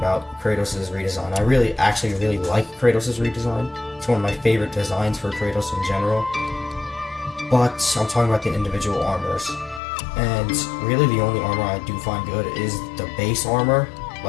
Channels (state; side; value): drops out; right; at 9.8 s